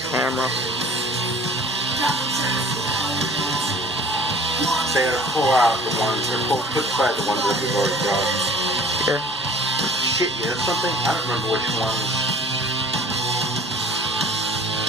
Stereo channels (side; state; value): both; normal; correlation 0.47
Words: camera. So you gotta pull out the ones, or put aside the ones that we've already brought. Here. Shit, you know something? I don't remember which ones.